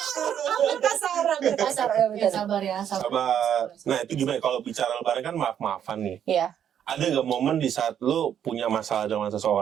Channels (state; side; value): quieter; left; 9.3 dB